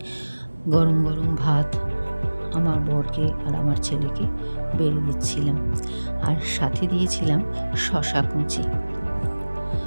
গরম গরম ভাত আমার বরকে আর আমার ছেলেকে বেড়ে দিচ্ছিলাম, আর সাথে দিয়েছিলাম শশা কুচি।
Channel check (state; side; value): inverted; both; correlation -1.00